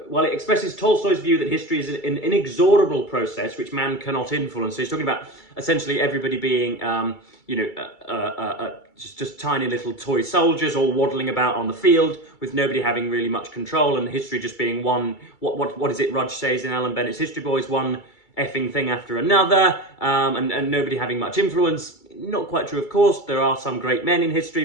well, it expresses Tolstoy's view that history is an inexorable process which man cannot influence. So he's talking about essentially everybody being, you know, just tiny little toy soldiers all waddling about on the field with nobody having really much control, and history just being one, what is it Rudge says in Alan Bennett's History Boys, one effing thing after another, and nobody having much influence. Not quite true, of course. There are some great men in history,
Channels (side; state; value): right; late; 2.3 ms